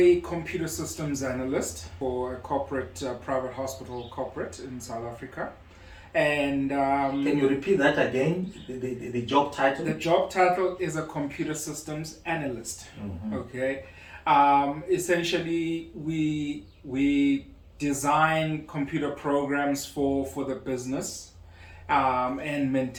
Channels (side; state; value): both; identical; correlation 1.00